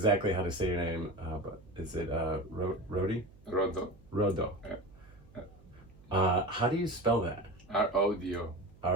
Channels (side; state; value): right; noise; hum, 25 dB below the sound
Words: how to say your name, but is it Rodi? Rodo. Rodo. Yeah. How do you spell that? R-O-D-O.